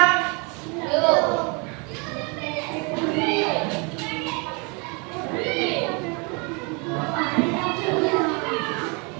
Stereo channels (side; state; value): left; quieter; 31.9 dB